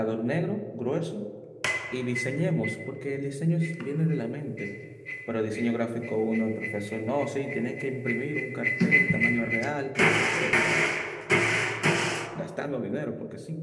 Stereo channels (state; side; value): identical; both; correlation 1.00